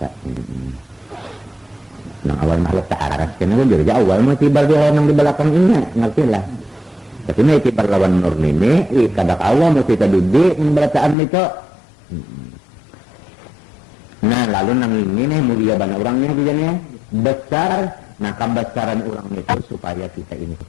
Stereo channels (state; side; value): drops out; right; at 11.2 s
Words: Nah awal makhluk tak aras kena jadi awal mah tiba dia orang di belakang ini ngertilah. Tapi ini tiba lawan Nur ini kadak awal mesti kita duduk memberataan itu. Nah lalu nang ini mulia banyak orangnya bijanya besar. Nah kebesaran orang itu supaya kita ini